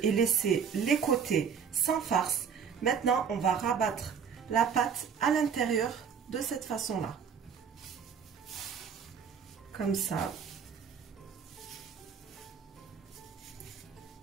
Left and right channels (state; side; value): quieter; left; 7.0 dB